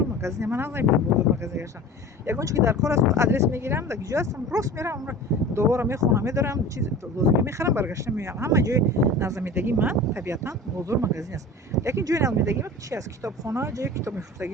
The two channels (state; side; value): normal; both; correlation 0.37